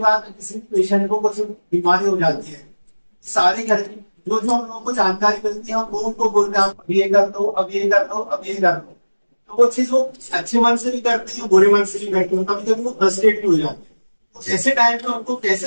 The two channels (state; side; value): inverted; both; correlation -1.00